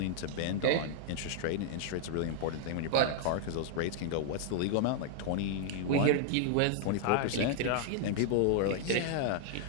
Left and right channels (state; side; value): different; both; correlation -0.01